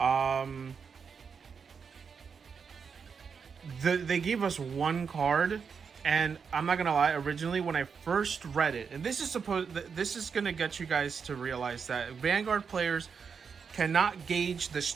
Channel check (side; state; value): left; quieter; 6.1 dB